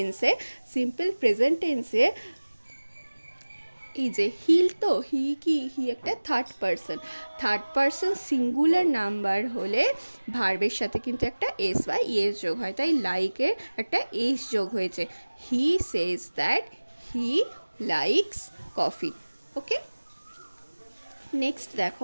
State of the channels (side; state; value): both; inverted; correlation -1.00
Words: প্রেজেন্ট টেন্সে এই যে হিল, তো হি কি, হি একটা থার্ড পারসন সিঙ্গুলার নাম্বার হলে ভার্বের সাথে কিন্তু একটা এস বা ইএস যোগ হয়, তাই লাইকের একটা এস যোগ হয়েছে। He says that he likes coffee. Okay, next